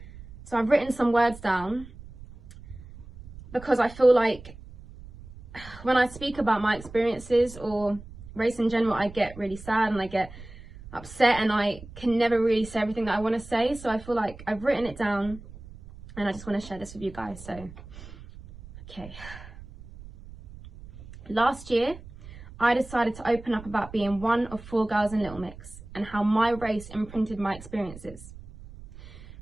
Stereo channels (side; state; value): right; noise; rumble, 17 dB below the sound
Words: So I've written some words down because I feel like when I speak about my experiences or race in general, I get really sad and I get upset and I can never really say everything that I want to say. So I feel like I've written it down and I just want to share this with you guys. So, okay. Last year, I decided to open up about being one of 4 girls in Little Mix and how my race imprinted my experiences.